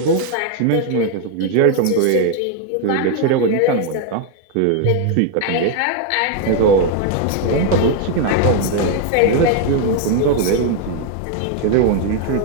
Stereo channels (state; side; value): different; both; correlation 0.01